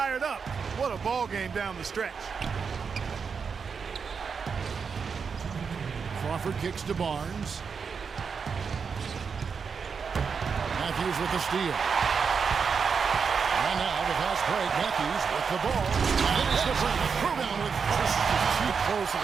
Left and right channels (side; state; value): left; quieter; 5.8 dB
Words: up. What a ball game down the stretch. Crawford kicks to Barnes. Matthews with the steal. And now the fast break. Matthews with the ball. Finish the break. Rebound with This is too close of